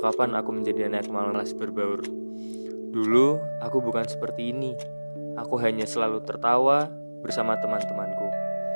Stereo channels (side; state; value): both; inverted; correlation -1.00